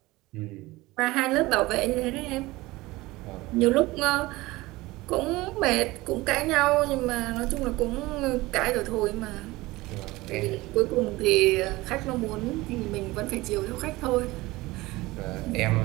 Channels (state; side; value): quieter; left; 20.1 dB